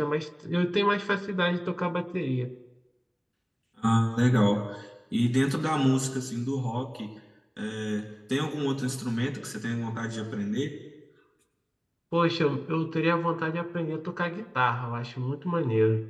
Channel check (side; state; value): both; identical; correlation 1.00